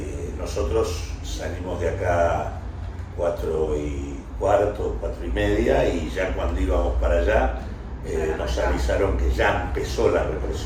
Nosotros salimos de acá 4:15, 4:30, y ya cuando íbamos para allá nos avisaron que ya empezó la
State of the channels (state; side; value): identical; both; correlation 1.00